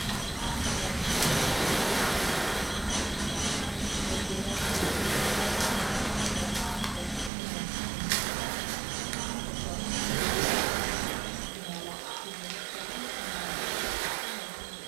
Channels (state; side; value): drops out; left; at 7.3 s